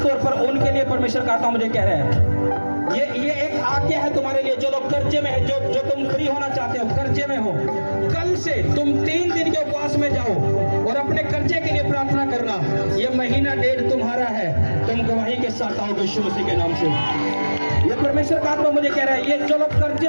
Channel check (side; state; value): both; inverted; correlation -1.00